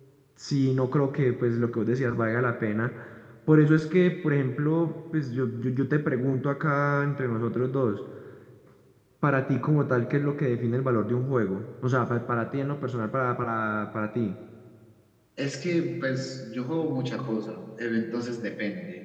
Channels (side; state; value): both; identical; correlation 1.00